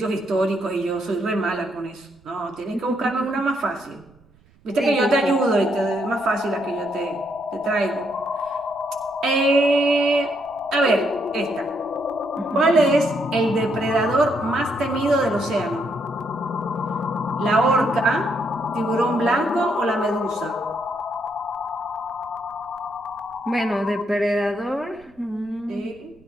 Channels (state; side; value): noise; right; rumble, 29 dB below the sound